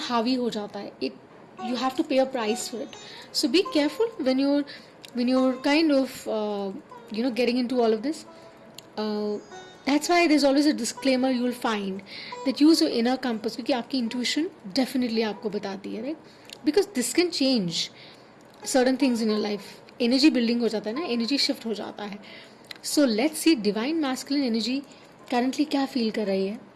हावी हो जाता है. इट यू हैव टू पे a price for it. So be careful when you're kind of getting into all of this. That's why there's always a disclaimer you will find that use your inner compass, क्योंकि आपकी intuition definitely आपको बताती है, right. Because this can change certain things in your life. Energy building हो जाता है ना, energy shift हो जाता है. So let's see divine masculine energy currently क्या feel कर रही है.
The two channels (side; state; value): both; identical; correlation 1.00